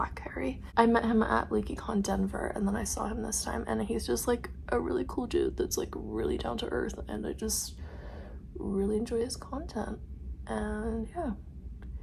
Harry. I met him at LeakyCon Denver, and then I saw him this time, and he's just like a really cool dude that's like really down to earth, and I just really enjoy his content. And yeah,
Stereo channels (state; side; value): identical; both; correlation 1.00